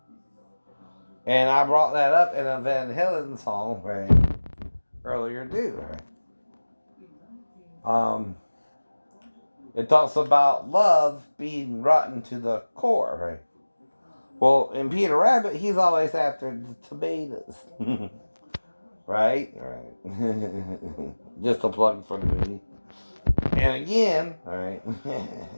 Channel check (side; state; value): both; inverted; correlation -1.00